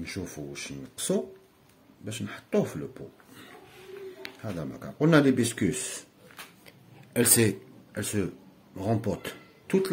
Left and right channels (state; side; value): identical; both; correlation 1.00